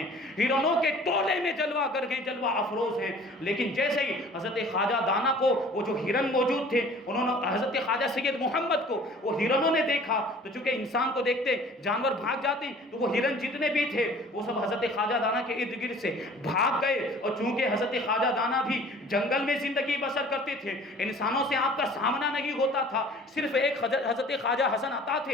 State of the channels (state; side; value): normal; both; correlation 0.49